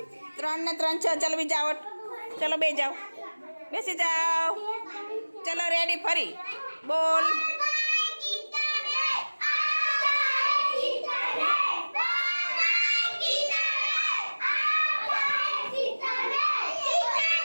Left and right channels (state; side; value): inverted; both; correlation -1.00